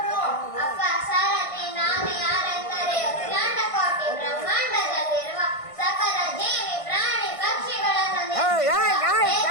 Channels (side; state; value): right; late; 1.5 ms